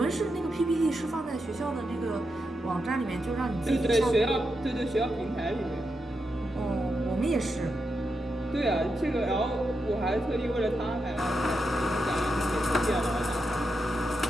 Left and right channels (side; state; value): both; normal; correlation 0.86